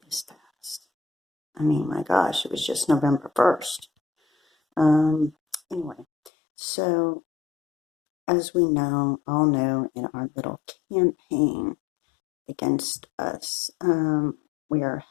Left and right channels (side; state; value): right; drops out; at 6.3 s